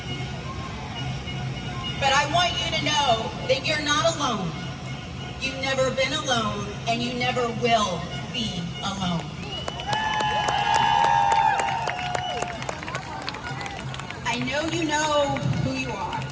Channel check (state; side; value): identical; both; correlation 1.00